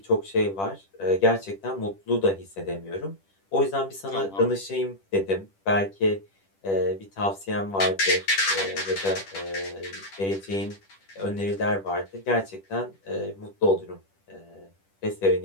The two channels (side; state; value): right; late; 10 ms